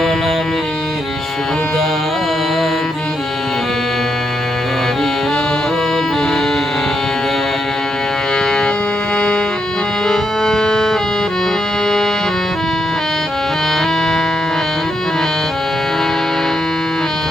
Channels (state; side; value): normal; both; correlation 0.81